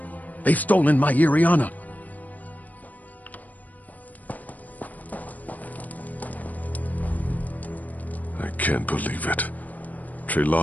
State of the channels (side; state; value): right; late; 0.077 ms